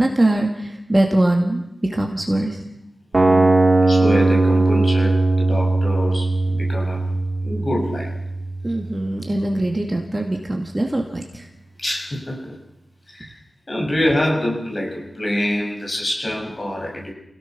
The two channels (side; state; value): both; normal; correlation 0.96